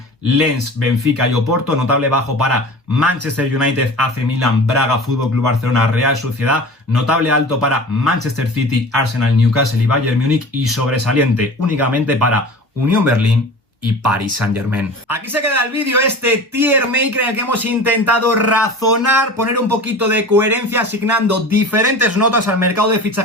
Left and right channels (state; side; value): normal; both; correlation 0.37